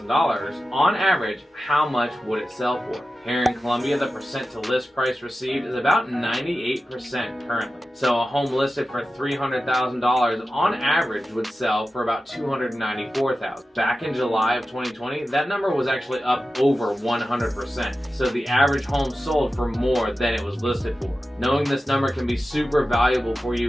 on average, how much would it sell for? Here in Columbia, the percent to list price received is about 98% currently. So a home listed for $300,000 on average would sell for about $294,000. Back in July of 2020, that number was actually up over 100%. So the average home sold for more than it was listed for. Knowing this number can be super valuable for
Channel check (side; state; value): both; normal; correlation 0.93